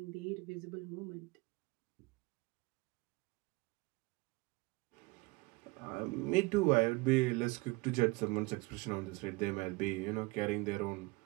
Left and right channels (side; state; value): left; quieter; 24.5 dB